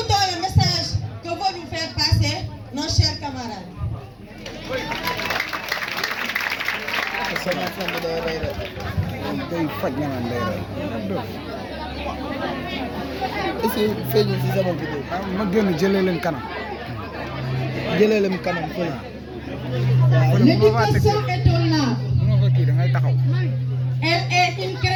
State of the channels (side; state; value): both; identical; correlation 1.00